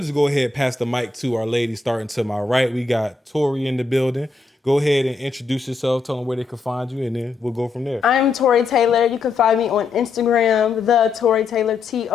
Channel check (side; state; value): right; quieter; 4.3 dB